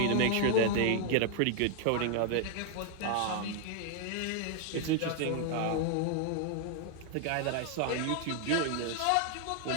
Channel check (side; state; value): both; different; correlation 0.00